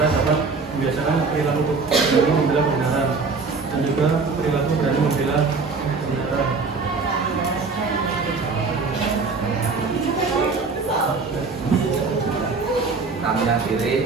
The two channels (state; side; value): quieter; left; 4.4 dB